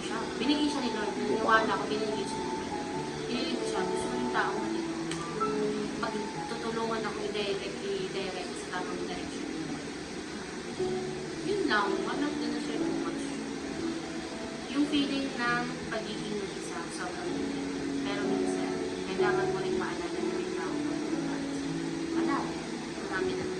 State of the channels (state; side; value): identical; both; correlation 1.00